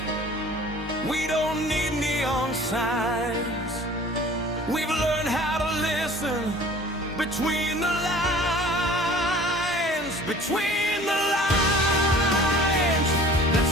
we don't need neon signs. We've learned how to listen between the lines, between the lines.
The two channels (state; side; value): normal; both; correlation 0.47